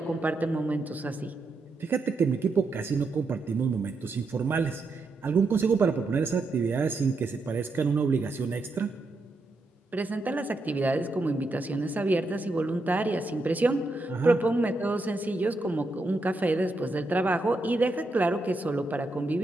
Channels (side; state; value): left; quieter; 3.0 dB